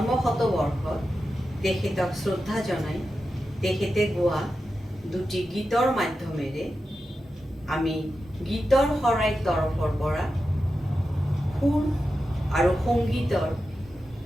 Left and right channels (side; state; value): both; normal; correlation 0.91